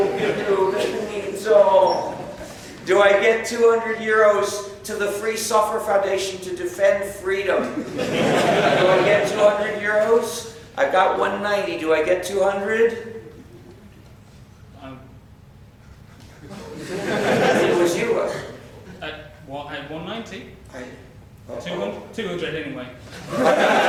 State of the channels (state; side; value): identical; both; correlation 1.00